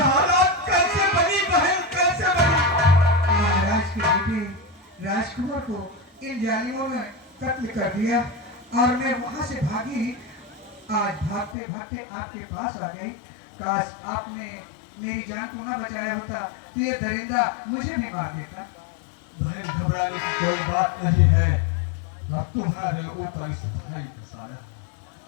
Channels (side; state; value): right; drops out; at 11.6 s